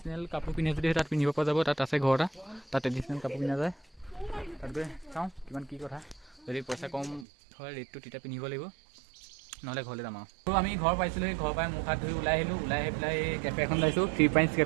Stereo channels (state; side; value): drops out; left; at 7.2 s